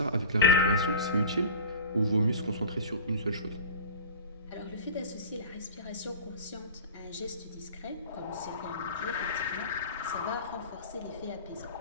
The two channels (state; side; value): inverted; both; correlation -0.36